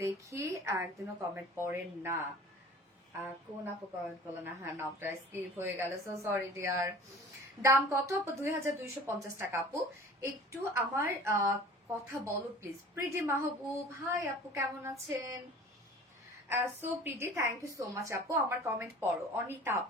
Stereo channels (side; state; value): both; normal; correlation 0.44